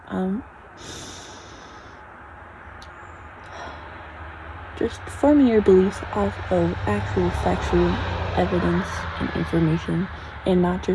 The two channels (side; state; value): both; identical; correlation 1.00